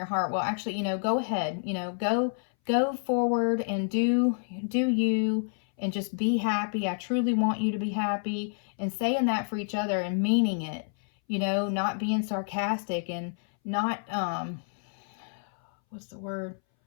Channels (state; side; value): silent; right; 59 dB below the other